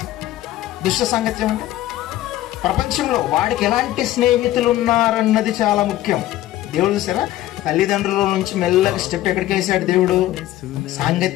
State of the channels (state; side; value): quieter; right; 14.5 dB